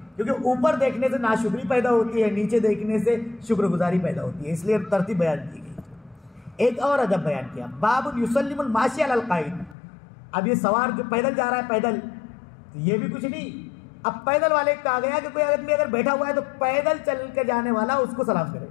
क्योंकि ऊपर देखने से नाशुक्री पैदा होती है, नीचे देखने से शुक्रगुजारी पैदा होती है। इसलिए तरतीब बयान की गई। एक और अदब बयान किया, बाबुल युसल्लिमुल माशी अलल काइद। अब ये सवार जो पैदल जा रहा है, पैदल, तो ये भी कुछ नहीं। अब पैदल वाले कहा गया कि कोई आदमी अगर बैठा हुआ है तो पैदल चल के जाने वाला उसको सलाम करे,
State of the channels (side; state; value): right; drops out; at 9.8 s